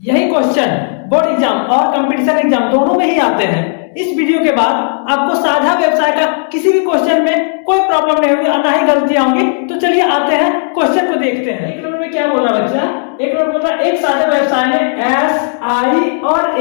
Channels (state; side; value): silent; right; digital silence